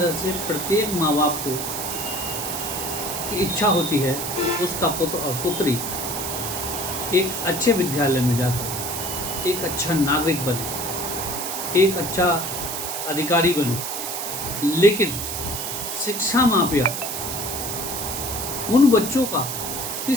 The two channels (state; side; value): noise; right; hiss, 4 dB below the sound